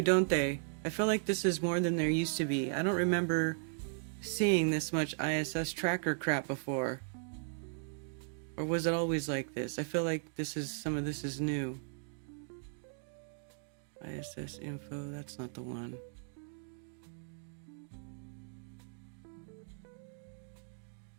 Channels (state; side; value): silent; left; digital silence